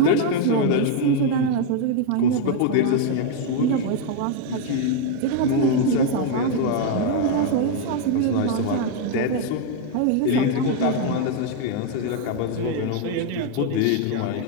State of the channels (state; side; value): different; both; correlation 0.01